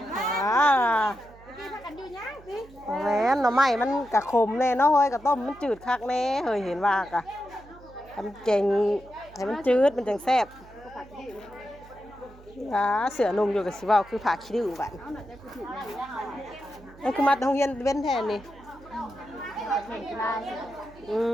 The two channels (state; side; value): noise; right; hum, 22 dB below the sound